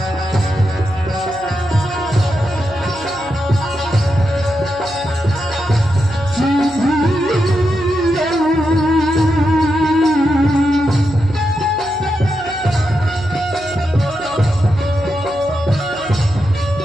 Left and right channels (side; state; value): right; noise; hum, 19 dB below the sound